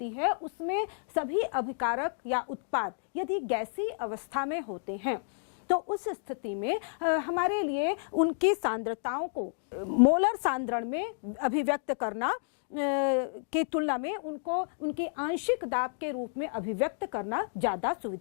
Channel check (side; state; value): right; silent; digital silence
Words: है उसमें सभी अभिकारक या उत्पाद यदि गैसीय अवस्था में होते हैं तो उस स्थिति में हमारे लिए उनकी सांद्रताओं को मोलर सांद्रण में अभिव्यक्त करना की तुलना में उनको उनके आंशिक दाब के रूप में अभिव्यक्त करना ज़्यादा